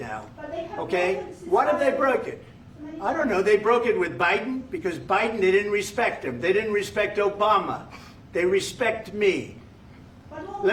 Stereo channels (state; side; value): identical; both; correlation 1.00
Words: Okay? What if they broke it? I don't know. They broke it with Biden, because Biden, they didn't respect him. They didn't respect Obama. They respect me.